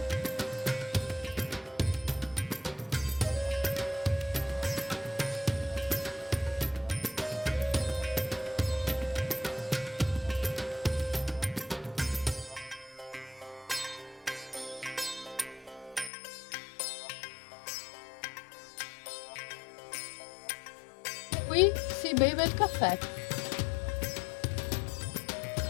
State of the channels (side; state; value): right; drops out; at 16.1 s